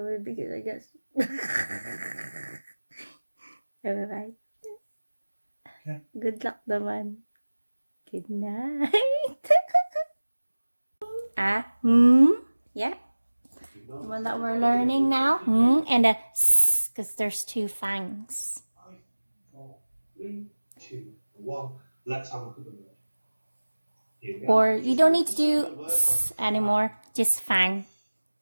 because I guess. Alright. Okay. Good luck naman. Good night. Yeah. The one that we're learning now. And a s, because there's two fangs. 5, 4, 3, 2, 1. Let's have a look at the word. Here we Or are. you don't need to do s anymore. Just fang.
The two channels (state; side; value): inverted; both; correlation -1.00